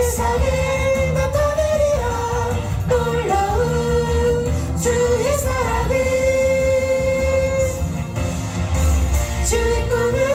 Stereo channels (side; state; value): both; identical; correlation 1.00